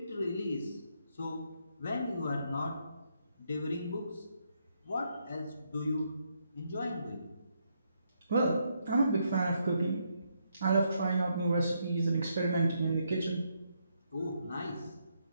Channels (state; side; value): inverted; both; correlation -0.77